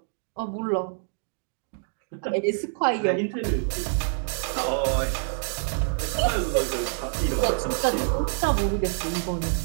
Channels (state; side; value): silent; left; digital silence